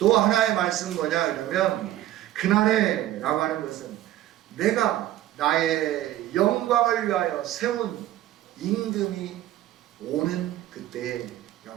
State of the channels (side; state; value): left; quieter; 13.8 dB